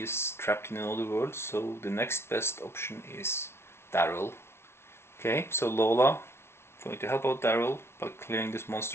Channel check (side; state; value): right; late; 0.12 ms